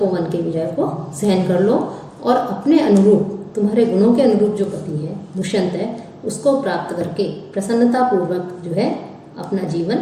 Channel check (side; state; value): both; identical; correlation 1.00